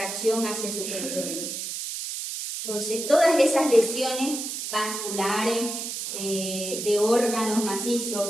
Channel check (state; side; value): noise; right; hiss, 5 dB below the sound